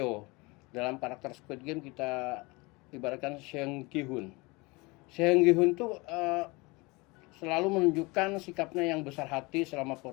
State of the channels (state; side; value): quieter; right; 25.3 dB